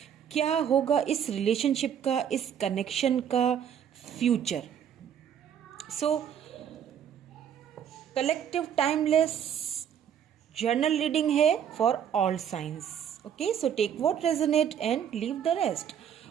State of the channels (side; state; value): left; quieter; 8.8 dB